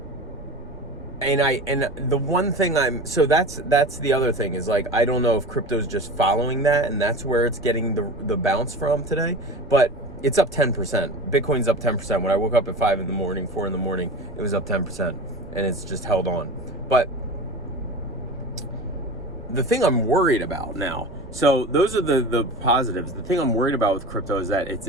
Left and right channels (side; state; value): right; noise; rumble, 19 dB below the sound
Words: and the one thing so that's the other thing is like, I don't know if crypto's just following that and that's where it's getting the bounce from today, but it's up 10%. Bitcoin's up 10%. When I woke up at 4 in the morning, it was up 10%, and it's just held on. But the thing I'm worried about now, so those are the positives. The thing I'm worried about with crypto is that it's